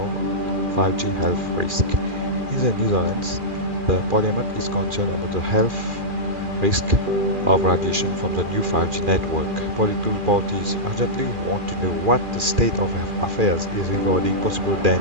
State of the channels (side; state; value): left; late; 2.4 ms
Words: 5G health risk. In the Netherlands, the Parliament is concerned about the health risk of radiation from the new 5G network. Political parties urgently want to know what the state of affairs is regarding possible